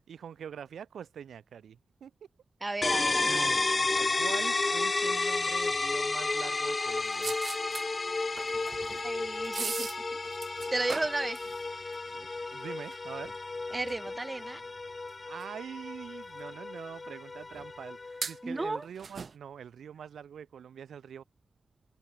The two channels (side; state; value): both; normal; correlation 0.95